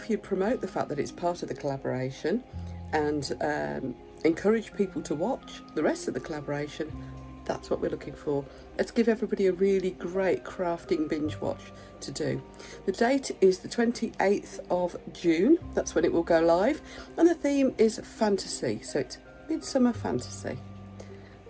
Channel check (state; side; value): identical; both; correlation 1.00